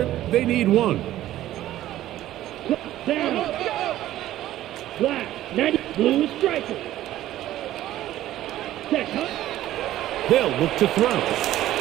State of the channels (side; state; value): left; quieter; 13.9 dB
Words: They need one. Down. Black. 90. Blue striker. Set. They'll look to throw.